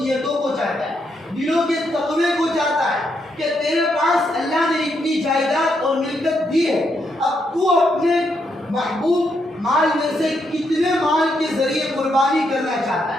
کو چاہتا ہے، دلوں کے تقوی کو چاہتا ہے کہ تیرے پاس اللہ نے اتنی جائیداد اور ملکت دی ہے، اب تو اپنے محبوب مال میں سے کتنے مال کے ذریعے قربانی کرنا چاہتا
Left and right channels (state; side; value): normal; both; correlation 0.78